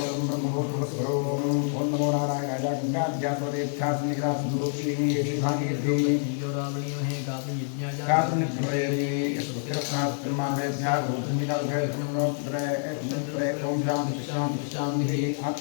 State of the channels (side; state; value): right; silent; 60 dB below the other